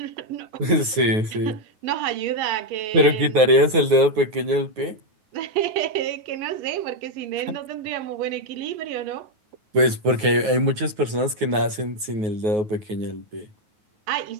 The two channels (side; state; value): left; late; 9.4 ms